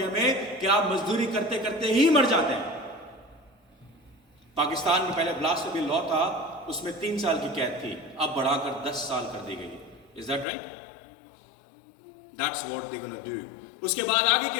में कि आप मजदूरी करते करते ही मर जाते हैं। पाकिस्तान में पहले ब्लास्फेमी लॉ था, उसमें 3 साल की कैद थी, अब बढ़ाकर 10 साल कर दी गई। Is that right? That's what they gonna do. उसके बाद आगे की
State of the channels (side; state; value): right; drops out; at 10.5 s